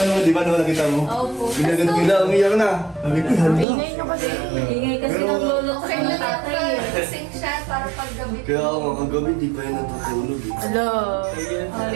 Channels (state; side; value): drops out; left; at 3.7 s